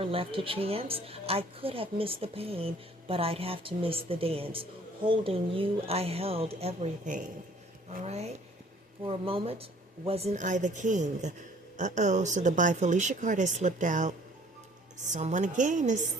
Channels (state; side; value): normal; both; correlation 0.55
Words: left to chance. I could have missed the pain, but I'd have to miss the dance. Holding you, I held everything, all right? For a moment, wasn't I the king? Uh-oh, so the By Felicia card has slipped out. Someone again has